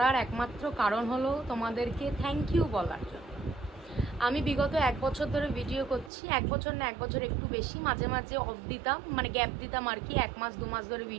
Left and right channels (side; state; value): left; drops out; at 6.1 s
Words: একমাত্র কারণ হলো তোমাদেরকে থ্যাংক ইউ বলার জন্য। আমি বিগত 1 বছর ধরে ভিডিও করছি, 1 বছর না 1 বছর একটু বেশি, মাঝে মাঝে অফ দিতাম, মানে গ্যাপ দিতাম আর কি, 1 মাস 2 মাস ধরে